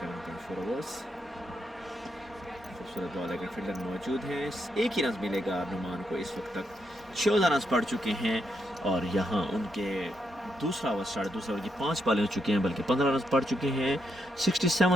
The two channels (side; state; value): both; normal; correlation 0.80